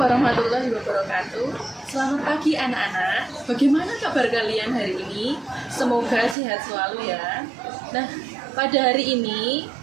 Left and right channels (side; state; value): left; drops out; at 6.4 s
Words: wabarakatuh. Selamat pagi anak-anak. Bagaimana kabar kalian hari ini? Semoga sehat selalu ya. Nah, pada hari ini